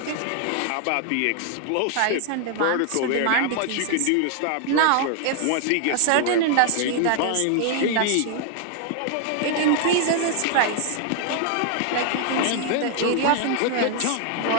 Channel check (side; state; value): both; different; correlation 0.00